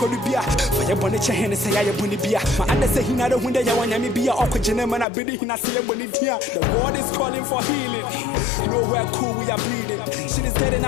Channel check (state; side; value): drops out; right; at 5.1 s